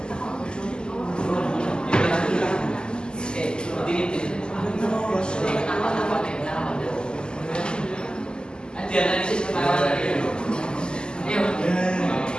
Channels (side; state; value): right; late; 0.047 ms